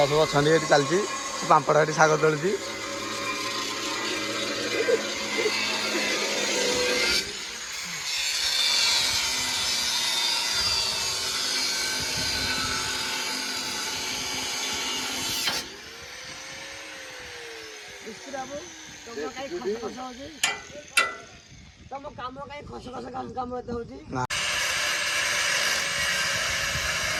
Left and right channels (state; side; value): identical; both; correlation 1.00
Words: सब अच्छा ये चलती पापड़ ये शाग तोलती तुम कम कहीं खस खस कम होते हो।